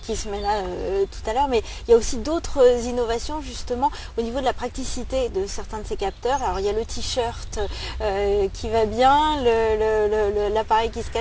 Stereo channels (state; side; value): identical; both; correlation 1.00